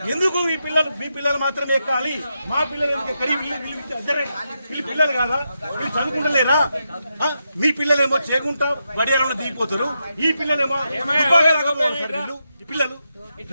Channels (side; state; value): both; inverted; correlation -0.85